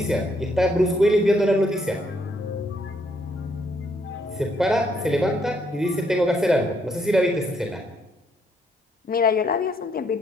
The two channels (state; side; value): normal; both; correlation 0.72